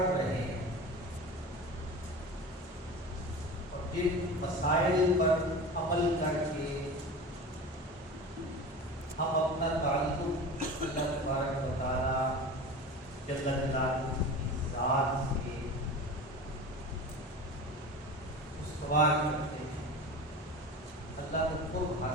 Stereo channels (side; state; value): both; normal; correlation 0.32